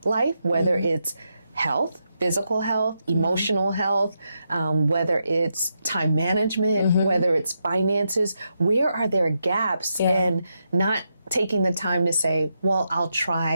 life, whether it's health, physical health, emotional health, whether it's time management, whether it's finances, where are there gaps, and not taking the time to say, well, I'll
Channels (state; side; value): inverted; both; correlation -0.84